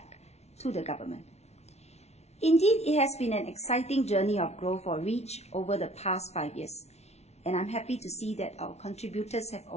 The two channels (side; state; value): right; late; 0.31 ms